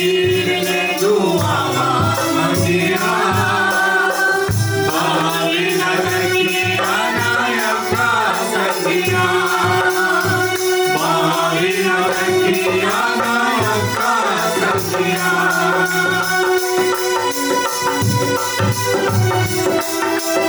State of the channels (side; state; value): both; identical; correlation 1.00